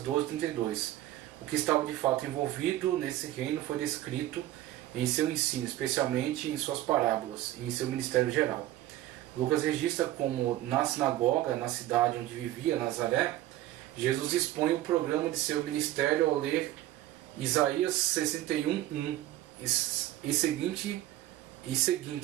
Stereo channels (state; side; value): quieter; left; 14.6 dB